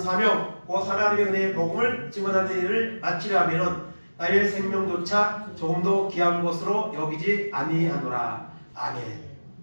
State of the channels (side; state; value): both; inverted; correlation -1.00